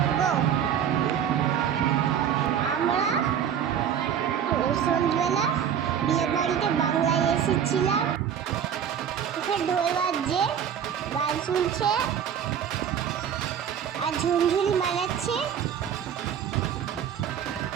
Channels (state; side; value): quieter; left; 8.7 dB